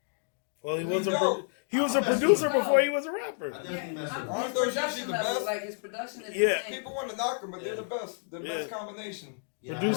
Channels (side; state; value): right; silent; 58 dB below the other